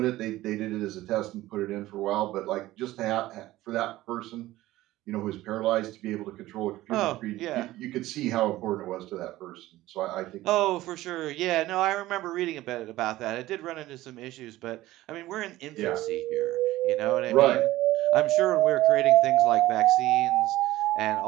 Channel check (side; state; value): left; quieter; 16.5 dB